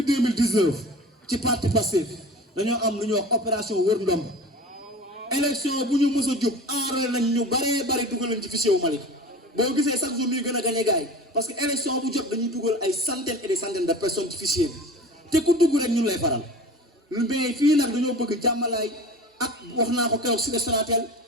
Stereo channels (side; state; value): both; normal; correlation 0.37